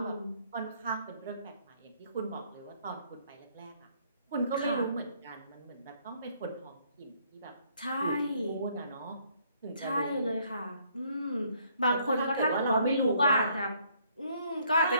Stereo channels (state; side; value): inverted; both; correlation -0.66